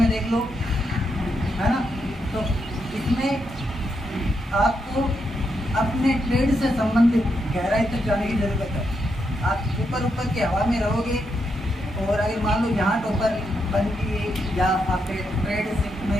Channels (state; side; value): normal; both; correlation 0.81